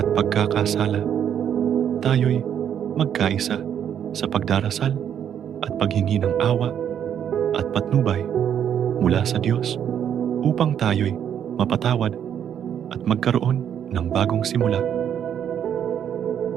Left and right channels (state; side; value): quieter; left; 9.1 dB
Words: pagkakasala. Tayo'y magkaisa sa pagdarasal at paghingi ng awa at patnubay mula sa Diyos upang tayo'y mapatawad at magkaroon ng bagong simula.